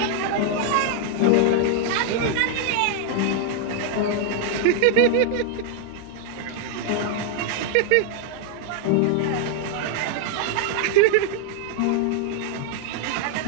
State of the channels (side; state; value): both; different; correlation 0.00